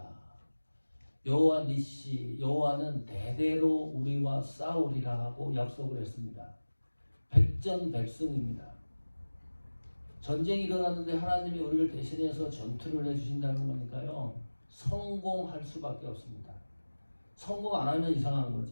여호와 니시, 여호와는 대대로 우리와 싸우리라 하고 약속을 했습니다. 백전백승입니다. 전쟁이 일어났는데 하나님이 우리를 대신해서 전투를 해주신다는 거니까요. 성공할 수밖에 없습니다. 성공 안 하면 이상한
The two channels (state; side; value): inverted; both; correlation -1.00